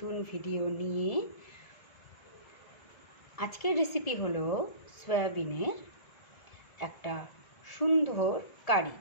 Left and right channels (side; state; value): right; late; 1.7 ms